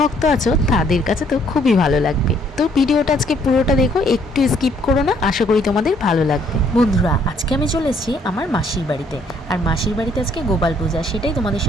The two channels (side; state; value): both; normal; correlation 0.65